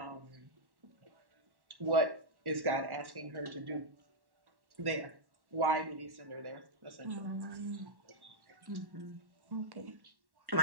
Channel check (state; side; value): late; left; 1.1 ms